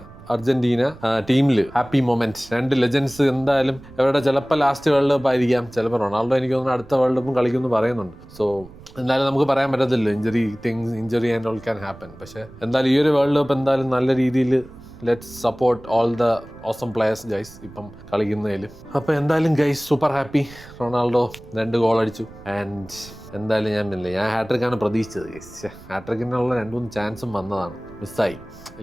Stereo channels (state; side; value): noise; right; rumble, 20 dB below the sound